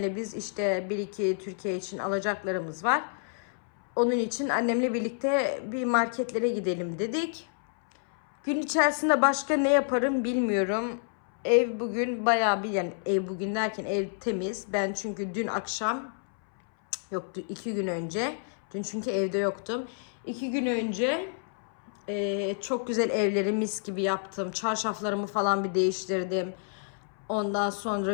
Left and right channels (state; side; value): silent; right; 59 dB below the other